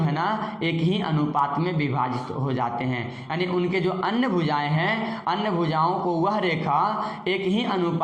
ना एक ही अनुपात में विभाजित हो जाते हैं। यानी उनके जो अन्य भुजाएं हैं, अन्य भुजाओं को वह रेखा एक ही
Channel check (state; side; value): identical; both; correlation 1.00